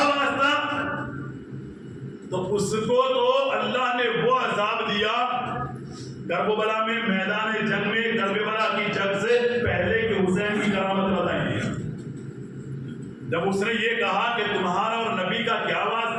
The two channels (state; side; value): identical; both; correlation 1.00